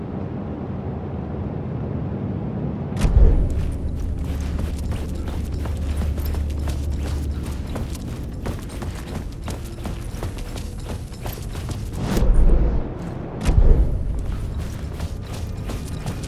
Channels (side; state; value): both; identical; correlation 1.00